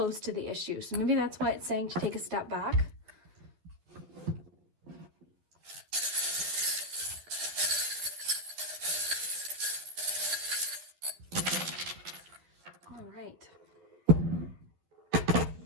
to the issue. So maybe that's why it's saying to take a step back. All right.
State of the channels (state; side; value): late; left; 12 ms